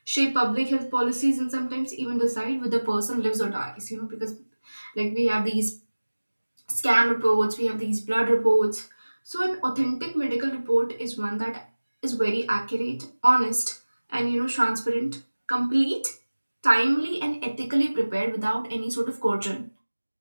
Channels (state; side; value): inverted; both; correlation -1.00